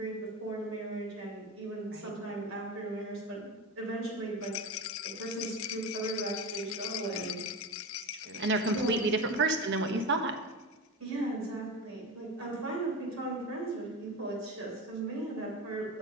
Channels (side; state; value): both; normal; correlation 0.24